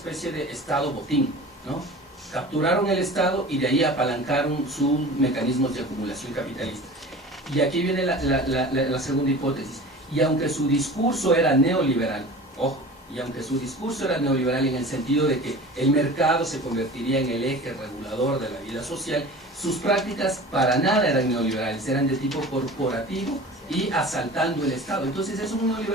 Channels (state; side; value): normal; both; correlation 0.38